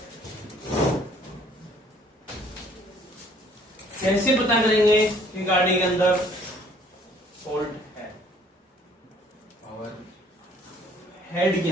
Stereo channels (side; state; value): both; normal; correlation 0.58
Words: कैसे पता करेंगे कि गाड़ी के अंदर फॉल्ट है? हेड के